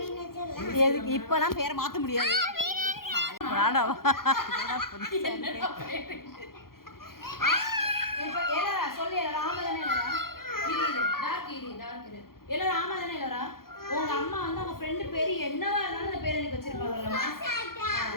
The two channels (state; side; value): late; right; 0.92 ms